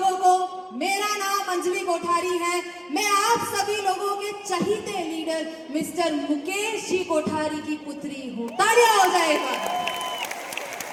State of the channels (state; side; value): identical; both; correlation 1.00